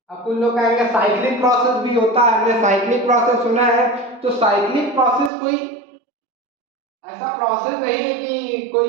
अब कुछ लोग कहेंगे साइक्लिक प्रोसेस भी होता है, हमने साइक्लिक प्रोसेस सुना है। तो साइक्लिक प्रोसेस कोई ऐसा प्रोसेस नहीं है कि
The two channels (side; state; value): left; drops out; at 5.3 s